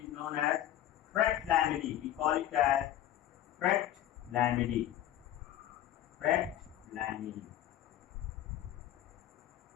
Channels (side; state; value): right; quieter; 12.3 dB